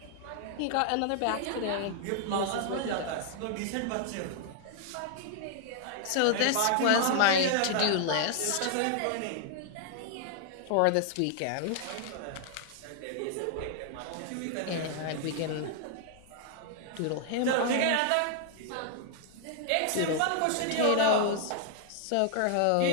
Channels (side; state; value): both; different; correlation 0.00